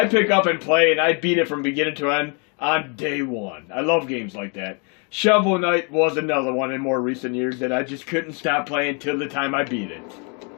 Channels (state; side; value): quieter; right; 35.4 dB